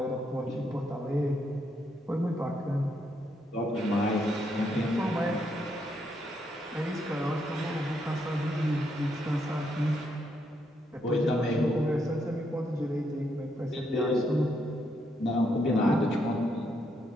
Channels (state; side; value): normal; both; correlation 0.77